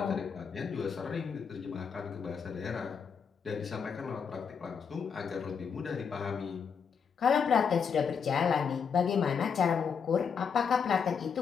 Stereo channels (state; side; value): quieter; right; 6.5 dB